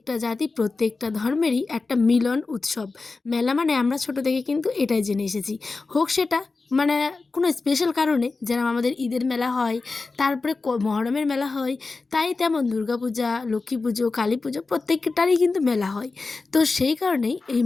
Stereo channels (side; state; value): right; quieter; 3.9 dB